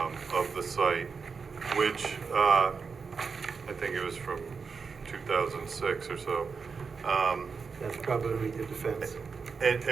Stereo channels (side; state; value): left; quieter; 5.3 dB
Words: of the site, which I think it was from 2006 or so. That's probably when we did the fence. And